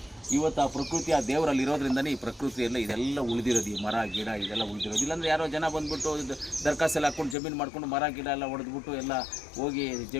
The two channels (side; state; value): right; drops out; at 7.4 s